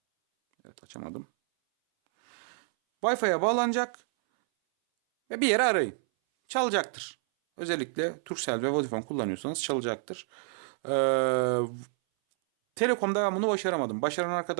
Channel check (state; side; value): silent; left; 59 dB below the other